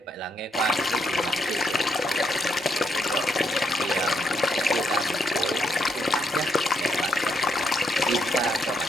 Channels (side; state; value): both; normal; correlation 0.77